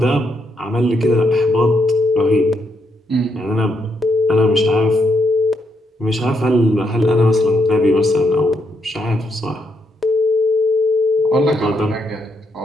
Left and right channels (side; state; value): both; normal; correlation 0.78